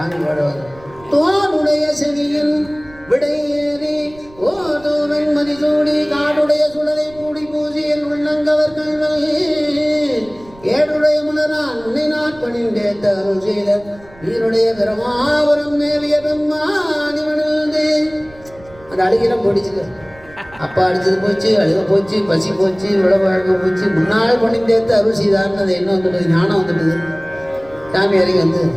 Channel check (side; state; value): right; noise; rumble, 24 dB below the sound